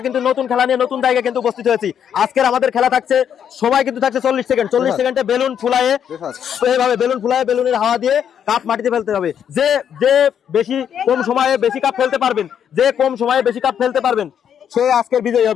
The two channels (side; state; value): right; quieter; 8.7 dB